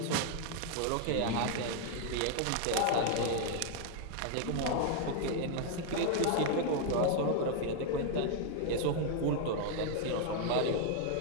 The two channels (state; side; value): different; both; correlation 0.00